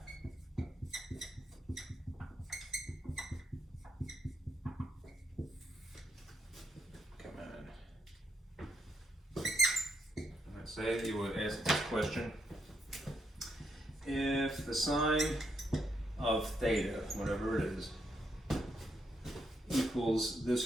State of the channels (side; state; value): both; normal; correlation 0.78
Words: Come on. Let's say you would ask this question. If the sine of theta, whatever it is, equals